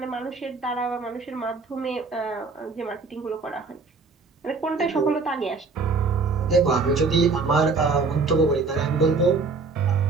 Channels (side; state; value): left; quieter; 4.2 dB